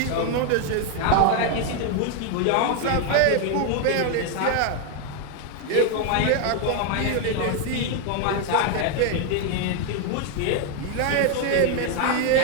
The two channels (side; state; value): both; different; correlation 0.01